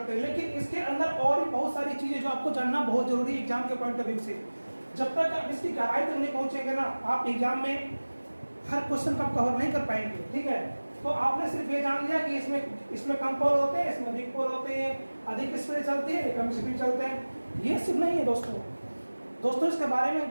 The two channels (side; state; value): both; inverted; correlation -1.00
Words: हैं। लेकिन इसके अंदर और भी बहुत सारी चीजें जो आपको जानना बहुत जरूरी है एग्जाम के पॉइंट ऑफ व्यू से। जब तक आप इसकी गहराई तक नहीं पहुंचेंगे ना, आप एग्जाम में हर क्वेश्चन का कवर नहीं कर पाएंगे। ठीक है, तो आपने सिर्फ ये जान लिया कि इसमें कम पोल होते हैं, इसमें अधिक पोल होते हैं, अधिक स्पीड चलती है, कम स्पीड चलते हैं। ये सिर्फ नहीं है दोस्तों, इसके बारे में